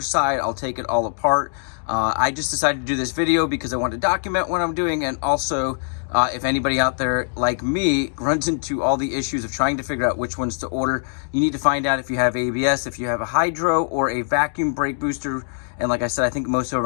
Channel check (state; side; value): silent; right; digital silence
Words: side. I'll take it all apart. I just decided to do this video because I want to document what I'm doing, and also if anybody out there like me runs into all the issues of trying to figure out which ones to order, you need to find out if you have ABS, if you have a hydro or a vacuum brake booster. And like I said, I think most of them